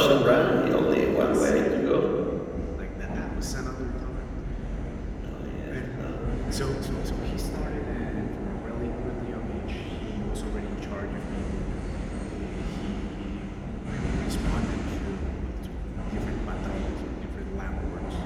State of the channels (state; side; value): identical; both; correlation 1.00